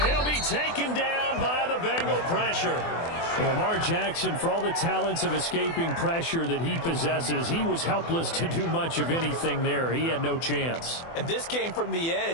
he'll be taken down by the Bengal pressure. Lamar Jackson, for all the talents of escaping pressure that he possesses, he was helpless to do much of anything there. He had no chance. And this came from the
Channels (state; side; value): late; right; 24 ms